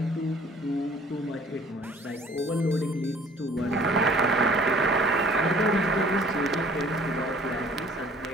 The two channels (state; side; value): normal; both; correlation 0.53